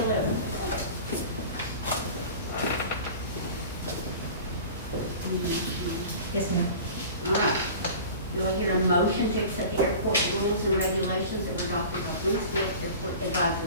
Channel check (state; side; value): inverted; both; correlation -0.39